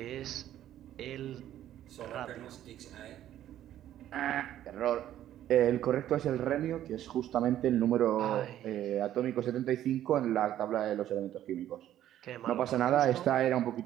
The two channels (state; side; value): quieter; left; 12.0 dB